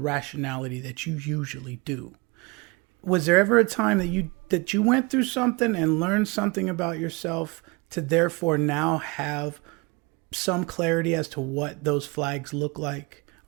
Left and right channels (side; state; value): left; quieter; 27.2 dB